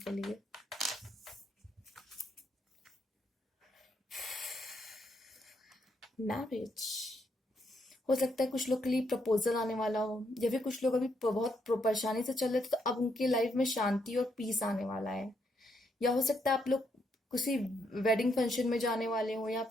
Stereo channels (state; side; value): normal; both; correlation 0.76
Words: लिए। मैरिज, हो सकता है कुछ लोग के लिए प्रपोजल आने वाला हो, या फिर कुछ लोग अभी बहुत परेशानी से चल रहे थे तो अब उनके लाइफ में शांति और पीस आने वाला है। या हो सकता है आप लोग किसी वेडिंग फंक्शन में जाने वाले हो, या